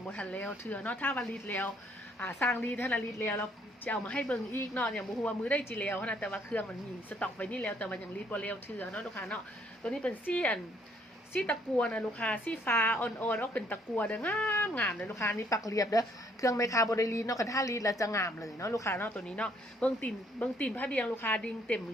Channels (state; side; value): normal; both; correlation 0.66